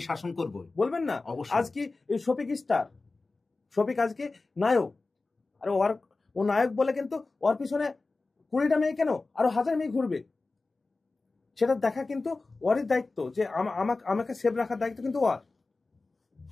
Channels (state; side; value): quieter; right; 3.6 dB